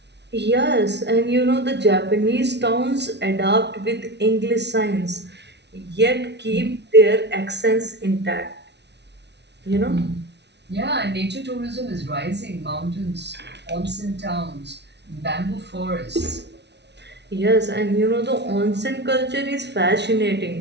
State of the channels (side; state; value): left; late; 0.50 ms